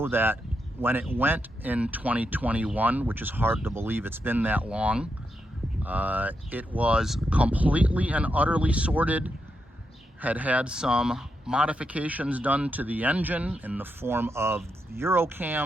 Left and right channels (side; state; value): both; normal; correlation 0.84